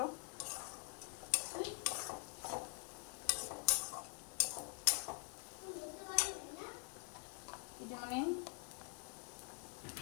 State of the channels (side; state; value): right; quieter; 38.1 dB